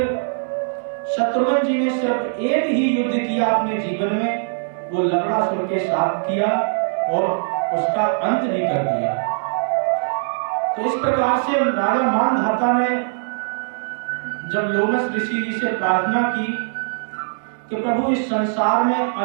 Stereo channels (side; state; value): left; silent; digital silence